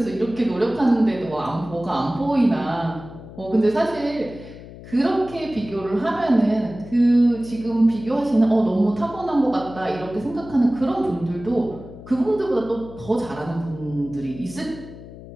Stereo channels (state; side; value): noise; left; hum, 16 dB below the sound